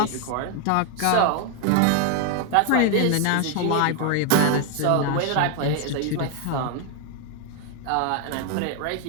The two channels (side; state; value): both; different; correlation 0.01